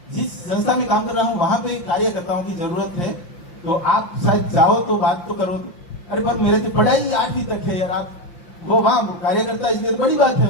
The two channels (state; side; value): late; right; 5.7 ms